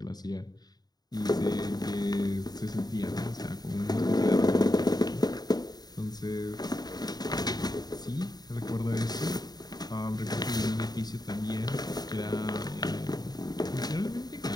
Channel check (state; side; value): late; right; 0.19 ms